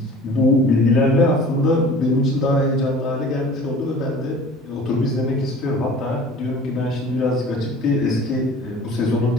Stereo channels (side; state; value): both; normal; correlation 0.44